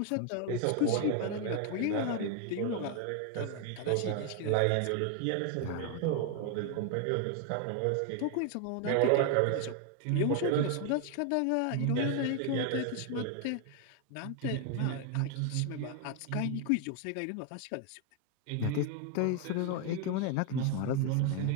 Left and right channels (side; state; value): both; different; correlation 0.01